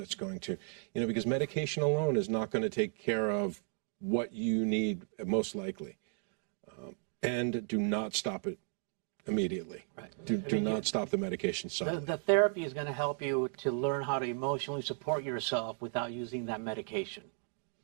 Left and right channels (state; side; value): silent; left; 55 dB below the other